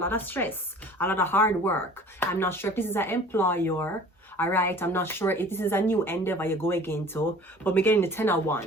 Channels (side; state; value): both; normal; correlation 0.46